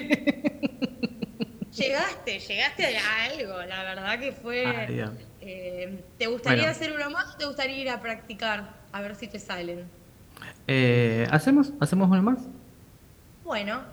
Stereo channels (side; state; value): both; identical; correlation 1.00